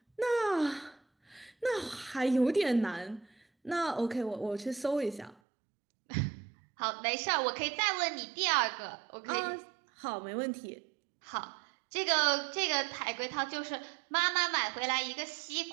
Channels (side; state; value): left; drops out; at 5.4 s